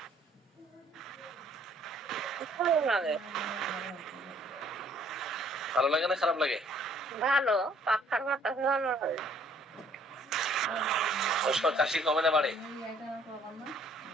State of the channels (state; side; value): normal; both; correlation 0.61